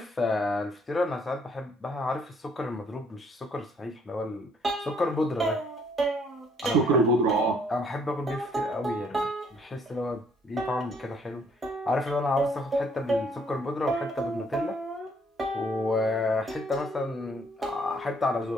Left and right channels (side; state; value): both; normal; correlation 0.66